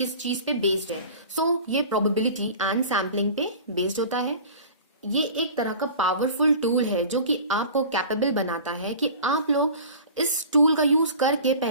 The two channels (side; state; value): both; inverted; correlation -0.40